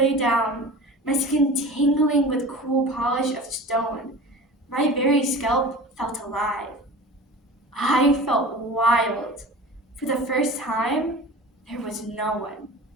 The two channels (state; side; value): normal; both; correlation 0.37